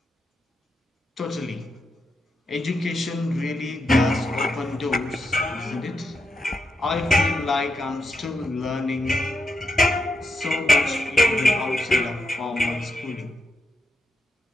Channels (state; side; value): normal; both; correlation 0.84